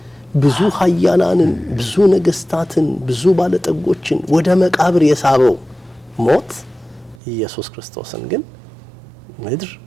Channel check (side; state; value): left; drops out; at 7.2 s